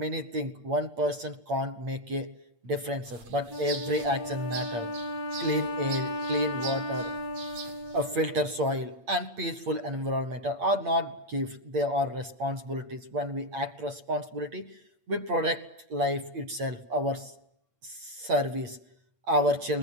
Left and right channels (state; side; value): late; left; 8.6 ms